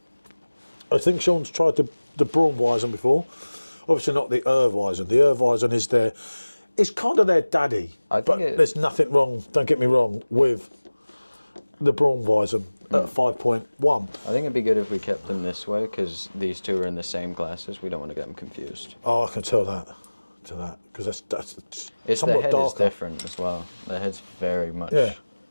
I think Sean's tried the Brauweisse before. Obviously not the Weissbier. The Weissbier is their it's kind of their daddy. But there's nothing wrong, don't get me wrong, with the Brauweisse at 5.1. I think it'd be good if we kept them this way, because these two are in the same glasses. We don't want to get them confused. Oh, I can tell that. Because that's it's somewhat the head darker. is different as well. The head's very much. Yeah.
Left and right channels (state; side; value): inverted; both; correlation -1.00